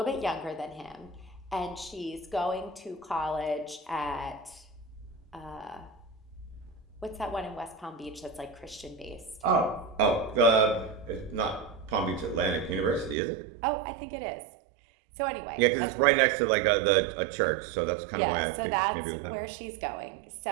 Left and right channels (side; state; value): left; drops out; at 13.2 s